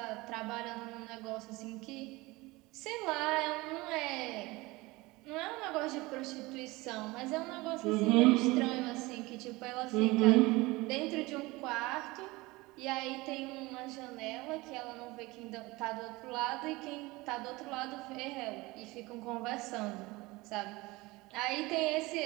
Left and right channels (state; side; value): quieter; left; 22.0 dB